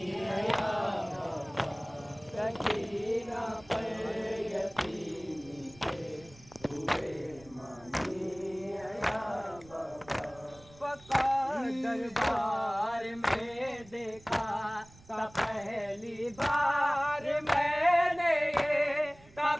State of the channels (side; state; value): right; noise; rumble, 24 dB below the sound